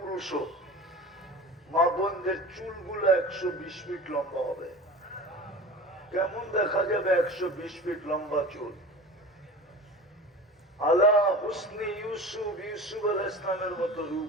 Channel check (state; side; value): normal; both; correlation 0.35